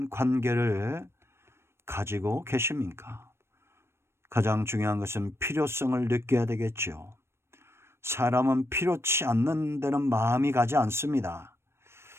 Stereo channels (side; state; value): left; late; 0.12 ms